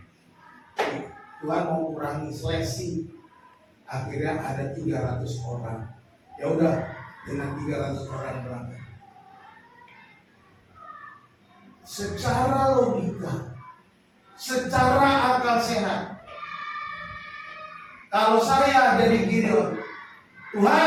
Tuhan mau kurangi seleksi. Akhirnya ada 300 orang. Ya udah, dengan 300 orang berangkat. Secara logika, secara akal sehat, kalau saya jadi Gideon,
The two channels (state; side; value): identical; both; correlation 1.00